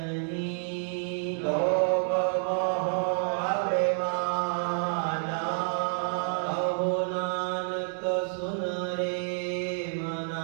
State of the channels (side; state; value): left; silent; 59 dB below the other